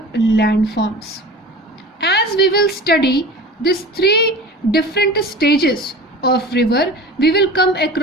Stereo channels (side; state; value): both; normal; correlation 0.36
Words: landforms. As we will study these three different stages of river, we will come